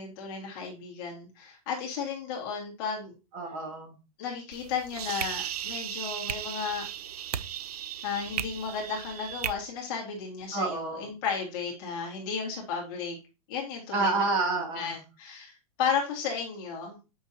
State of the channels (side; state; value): both; normal; correlation 0.11